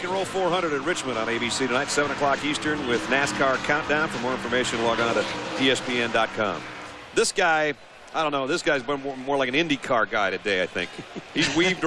and Roll 400 at Richmond on ABC tonight, 7 o'clock Eastern with NASCAR Countdown. For more information, log on to ESPN.com. This guy, I don't know, this guy's been more like an IndyCar guy today, I think. He's weaved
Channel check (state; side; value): identical; both; correlation 1.00